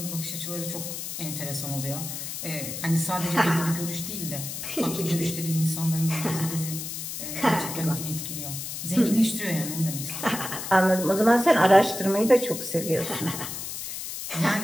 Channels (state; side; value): noise; left; hiss, 7 dB below the sound